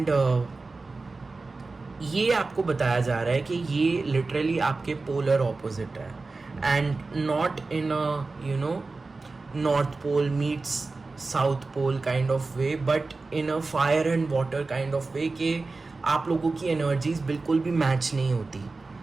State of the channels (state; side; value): quieter; left; 3.7 dB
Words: ये आपको बताया जा रहा है कि ये लिटरली आपके पोलर ऑपोजिट है, and not in a you know north pole meets south pole kind of way, but in a fire and water kind of way, कि आप लोगों की एनर्जीज बिल्कुल भी मैच नहीं होती।